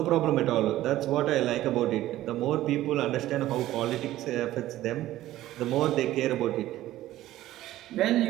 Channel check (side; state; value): left; quieter; 14.8 dB